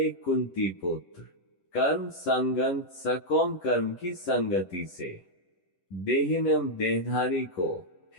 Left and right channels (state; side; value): late; right; 10 ms